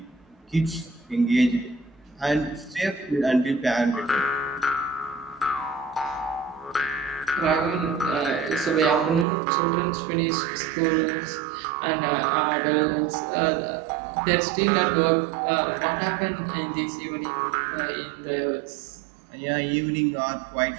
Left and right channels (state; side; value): drops out; left; at 9.2 s